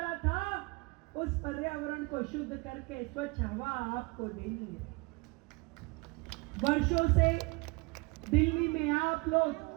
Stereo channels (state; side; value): quieter; left; 27.1 dB